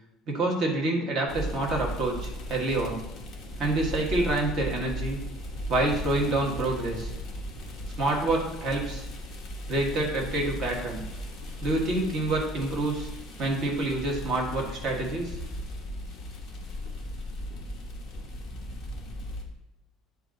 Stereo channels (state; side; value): normal; both; correlation 0.54